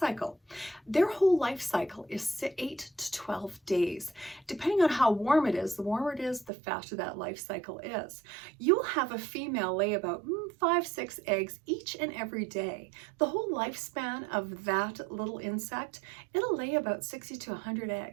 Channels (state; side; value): drops out; left; at 6.5 s